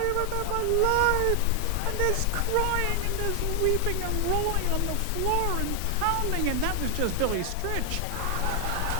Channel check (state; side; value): different; both; correlation 0.00